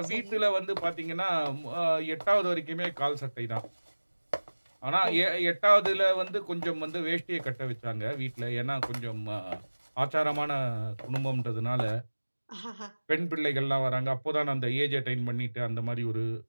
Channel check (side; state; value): both; inverted; correlation -1.00